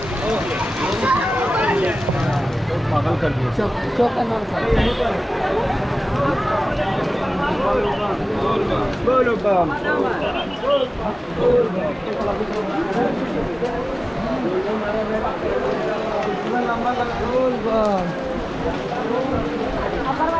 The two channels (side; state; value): both; normal; correlation 0.97